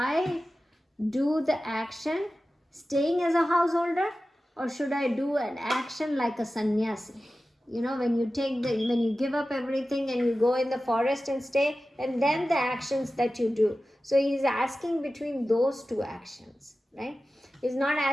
do the action staying as a householder, or should I do an action like a sannyasi? When you give up everything and you go in the forest and stay, and then the actions that you do. So he's asking between those 2 actions, right? He's not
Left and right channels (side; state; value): both; normal; correlation 0.95